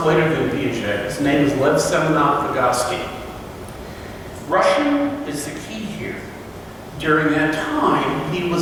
later than Piaget, his name is Lev Semenov Vygotsky. Russian is the key here. During that time, he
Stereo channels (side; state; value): both; identical; correlation 1.00